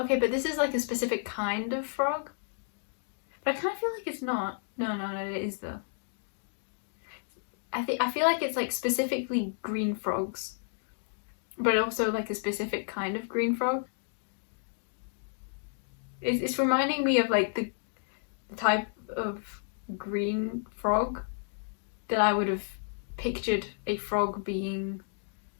but this is like a specific kind of frog. But I kind of feel like it's not. No, it is though. I feel like it's like specifically green frogs, but also like a specific kind of green frog. It's reminding me of like the type of green frog that I would have pictured a frog being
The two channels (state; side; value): silent; right; digital silence